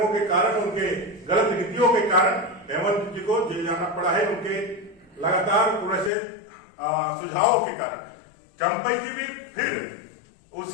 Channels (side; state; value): right; drops out; at 6.1 s